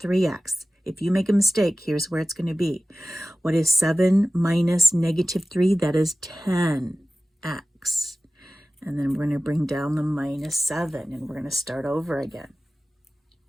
3x. If you make a mistake, here's where it's going to be. What is 7 minus negative 3? That is 10x. And then we're going to bring down the minus 7, and we're going to start over again.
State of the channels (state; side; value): normal; both; correlation 0.96